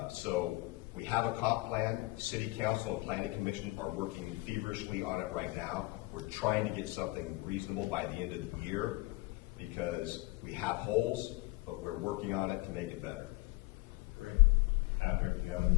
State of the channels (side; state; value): right; quieter; 22.5 dB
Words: So we have a comp plan. City Council and Planning Commission are working feverishly on it right now. We're trying to get something reasonable by the end of the year because we have holes, but we're working on it to make it better. Great. Patrick, do you have